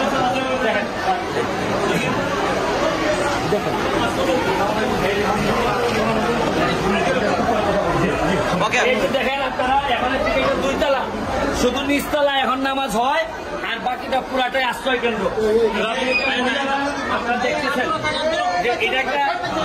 দেখেন আপনারা, এখন 2 তলা, শুধু নিচতলা এখন নামাজ হয়, আর বাকিটা পুরাটাই আশ্রয় কেন্দ্র। আপনারা দেখতেছেন যে এটা একটা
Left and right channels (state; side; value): identical; both; correlation 1.00